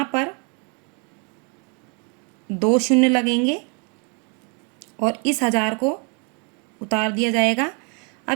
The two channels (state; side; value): quieter; left; 35.2 dB